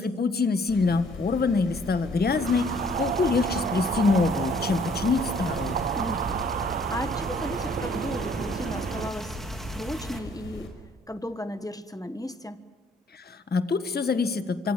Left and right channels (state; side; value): normal; both; correlation 0.61